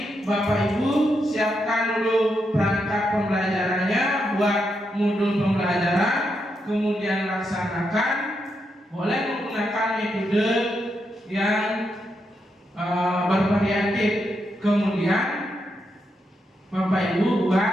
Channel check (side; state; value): both; normal; correlation 0.82